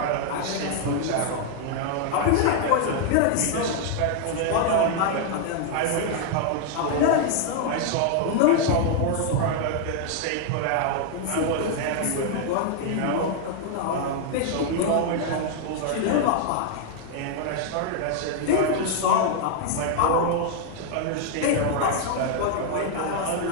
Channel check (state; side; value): different; both; correlation 0.00